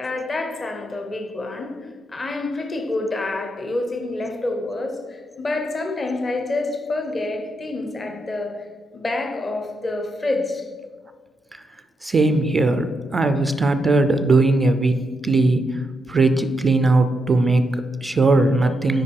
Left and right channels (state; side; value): normal; both; correlation 0.83